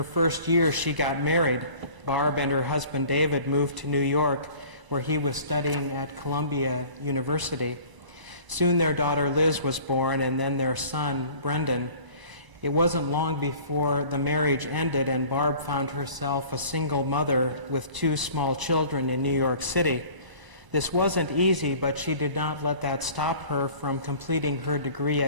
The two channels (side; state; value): left; late; 1.0 ms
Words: first year, she got married. Barb and her husband David moved to New York, where he was studying at Columbia University. Soon their daughter Liz was born, and then their son Brendan. It wasn't long before the marriage ended, and Barb found herself a single mother with 2 small children in New York City. This wasn't easy, but she did not let that stop her from completing her degree